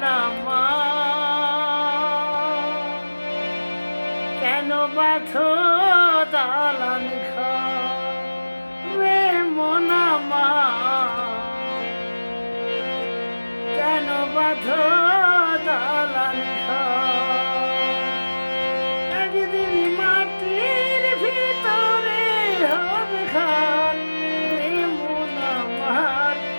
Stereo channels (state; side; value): inverted; both; correlation -1.00